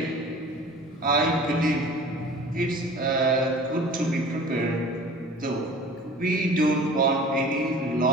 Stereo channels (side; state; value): both; normal; correlation 0.42